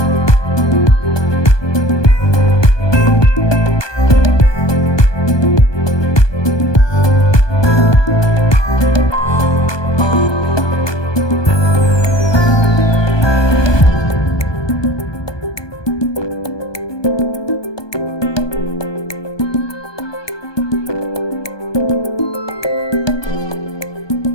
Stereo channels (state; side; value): late; right; 1.2 ms